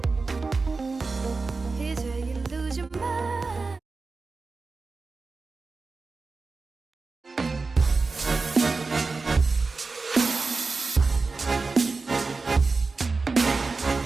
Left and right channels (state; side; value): quieter; left; 4.0 dB